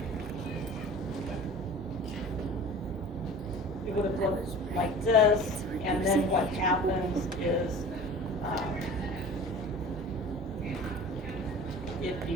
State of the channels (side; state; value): both; normal; correlation 0.40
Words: It would have looked like this, and then what happens is if